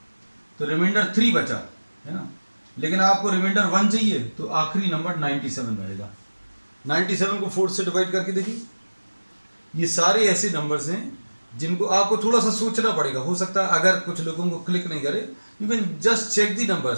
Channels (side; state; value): both; inverted; correlation -1.00